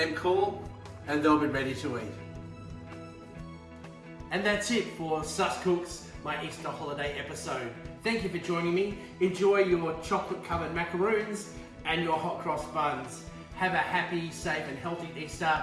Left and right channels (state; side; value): identical; both; correlation 1.00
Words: cool, and they'll be ready to eat. And that's it for Sus Cooks, my Easter holiday episode. Thank you for joining me. Enjoy your chocolate-covered macaroons and your hot cross buns. Have a happy, safe and healthy Easter